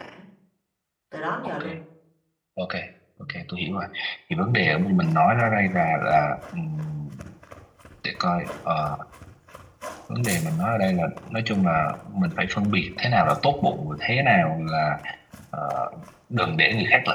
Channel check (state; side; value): identical; both; correlation 1.00